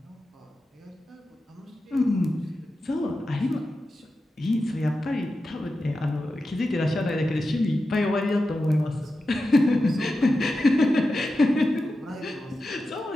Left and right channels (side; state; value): both; normal; correlation 0.91